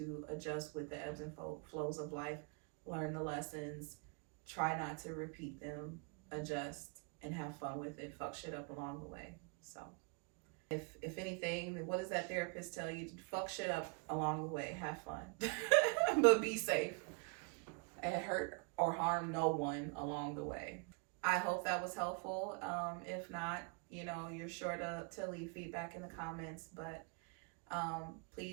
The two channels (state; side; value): quieter; left; 35.4 dB